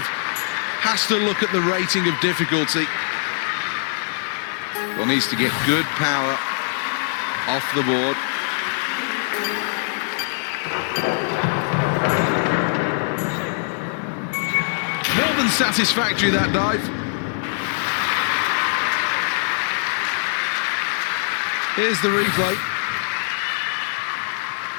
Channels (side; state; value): right; silent; 64 dB below the other